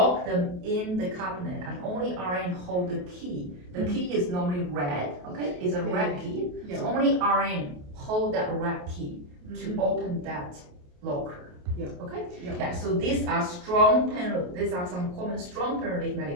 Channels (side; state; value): left; late; 28 ms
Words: them in the cabinet, and only RN hold the key. The key is normally red, okay? It's a red key. Yeah. So only RN hold that red key to open that locker. Yeah. Okay? Yeah. So these are some common strong pain relief